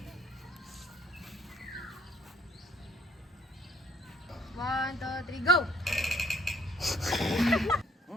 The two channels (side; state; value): both; normal; correlation 0.60